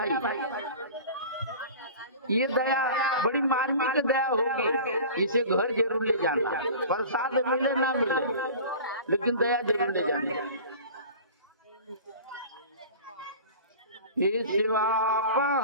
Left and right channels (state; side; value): inverted; both; correlation -0.39